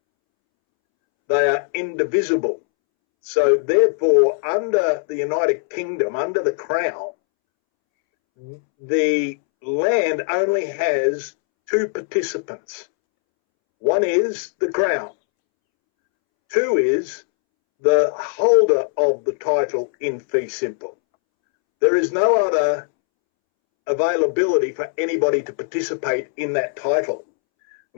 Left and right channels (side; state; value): right; silent; 66 dB below the other